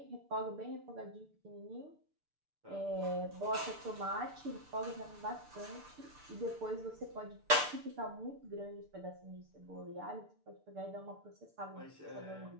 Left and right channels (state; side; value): late; left; 6.7 ms